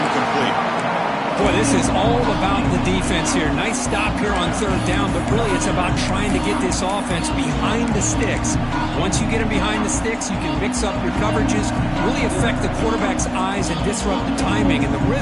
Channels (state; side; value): identical; both; correlation 1.00